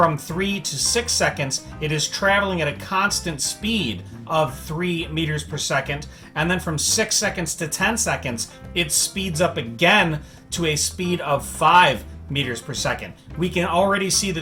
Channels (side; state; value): both; identical; correlation 1.00